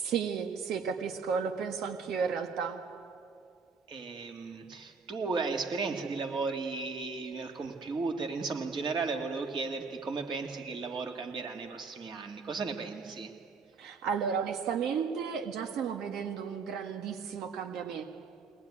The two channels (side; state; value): left; quieter; 5.1 dB